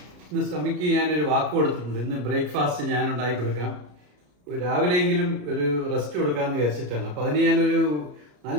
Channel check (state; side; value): late; left; 33 ms